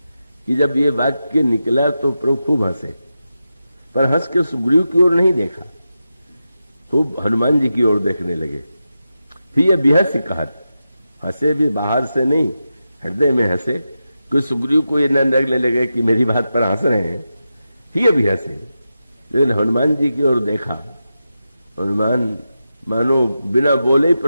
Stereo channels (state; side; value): inverted; both; correlation -0.90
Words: कि जब ये वाक्य निकला तो प्रभु खूब हंसे, पर हंस के सुग्रीव की ओर नहीं देखा, खूब हनुमान जी की ओर देखने लगे। फिर ये बेहस कहत, हंसे भी बाहर से नहीं, हृदय में हंसे, कि सुग्रीव को ये न लगने लगे कि मेरी बात पर हंस रहे हैं। फिर भी हंसे, लेकिन हनुमान जी की ओर देखा। हनुमान मानो बिना बोले ही